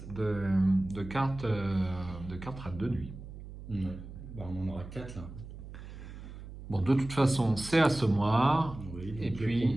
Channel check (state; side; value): noise; right; hum, 13 dB below the sound